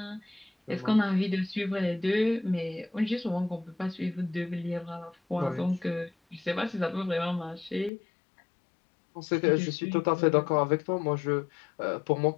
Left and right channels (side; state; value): right; drops out; at 7.9 s